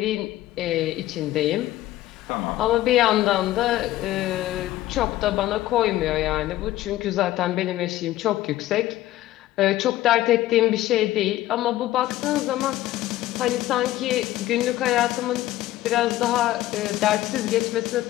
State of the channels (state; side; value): quieter; right; 15.2 dB